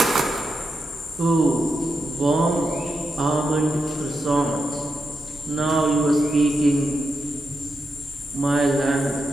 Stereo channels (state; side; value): normal; both; correlation 0.87